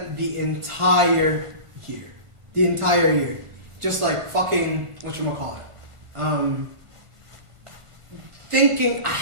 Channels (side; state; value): left; late; 1.5 ms